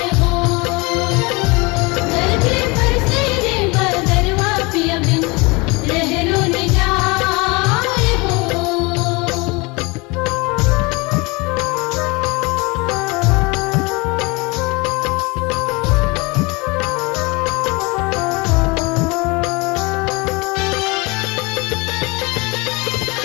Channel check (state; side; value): quieter; right; 26.4 dB